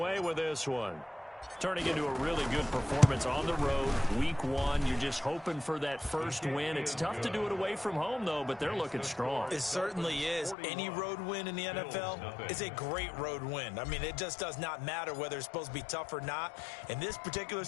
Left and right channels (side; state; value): right; drops out; at 10.6 s